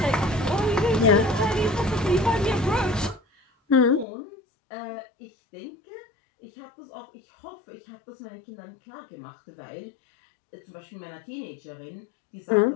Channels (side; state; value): right; drops out; at 4.0 s